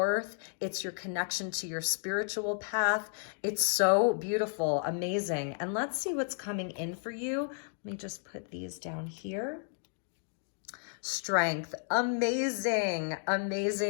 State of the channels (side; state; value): right; silent; digital silence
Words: It's your connection to your spiritual path. It's so beautiful, amazing. And let's see what's coming in for you. Let me just put these down here. Strength. Amazing,